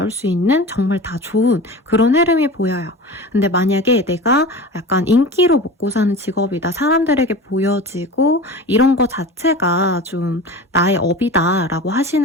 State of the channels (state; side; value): normal; both; correlation 0.33